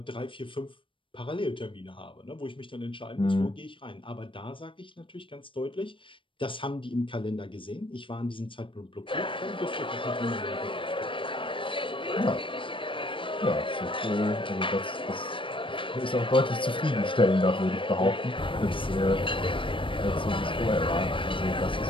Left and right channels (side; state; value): right; late; 0.25 ms